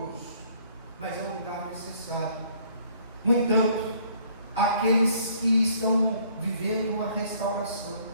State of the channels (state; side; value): inverted; both; correlation -0.61